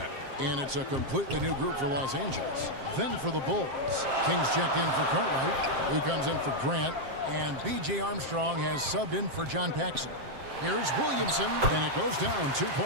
And it's a completely new group for Los Angeles. Then for the Bulls. Kings checked in for Cartwright. Lou comes in for Grant. And B.J. Armstrong has subbed in for John Paxson. Here's Williamson, and it goes down 2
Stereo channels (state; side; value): late; left; 7.5 ms